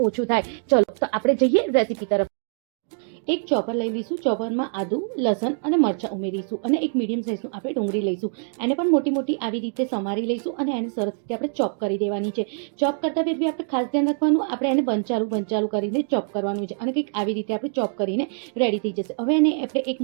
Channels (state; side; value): silent; left; 56 dB below the other